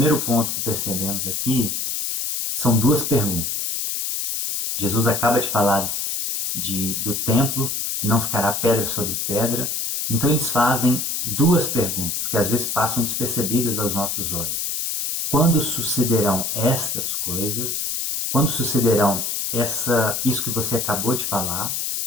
ponto que percebemos aqui são duas perguntas. Jesus acaba de falar do templo, que não ficará pedra sobre pedra. Então, eles fazem duas perguntas, que às vezes passam despercebidas aos nossos olhos. Quando sucederão estas coisas? Quando sucederão isso que você acabou de falar,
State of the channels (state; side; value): noise; left; hiss, 1 dB below the sound